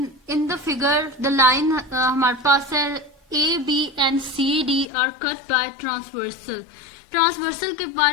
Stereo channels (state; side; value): drops out; right; at 4.9 s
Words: in the figure the line हमारे पास है A B and C D are cut by transversal. Transversal के